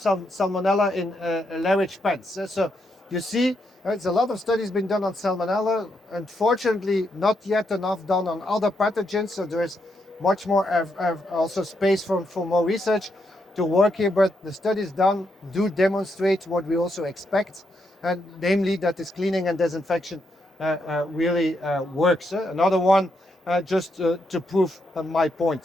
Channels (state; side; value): normal; both; correlation 0.80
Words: in large pens. So you see, there's a lot of studies been done on salmonella. Unfortunately, not yet enough done on other pathogens. So there is much more also space for more research to work here, but the studies done do demonstrate what we also expect, and namely that this cleaning and disinfection really works. Another one, just to prove my